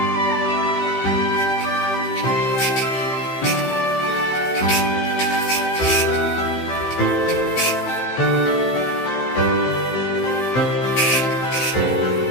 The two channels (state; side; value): late; right; 15 ms